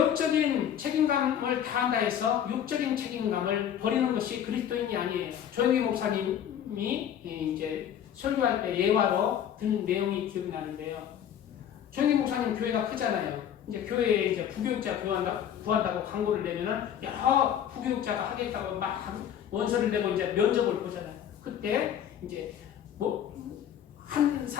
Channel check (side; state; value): right; quieter; 9.6 dB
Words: 책임감을 다한다 해서 육적인 책임감을 버리는 것이 그리스도인이 아니에요. 조영기 목사님이 이제 설교할 때 예화로 든 내용이 기억나는데요. 조영기 목사님 교회가 크잖아요. 이제 교회에 이제 부교육자 구한다고 광고를 내면은 여러 부교육자가 하겠다고 막 원서를 내고 이제 면접을 보잖아요. 그때 이제 한